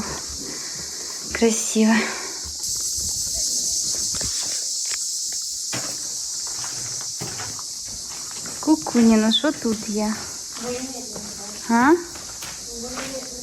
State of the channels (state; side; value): identical; both; correlation 1.00